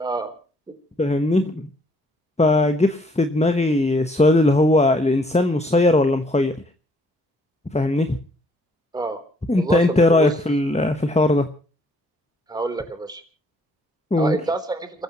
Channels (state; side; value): normal; both; correlation 0.64